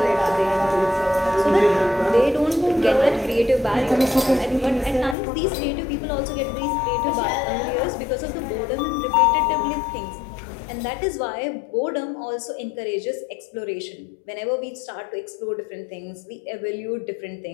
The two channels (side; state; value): right; drops out; at 5.2 s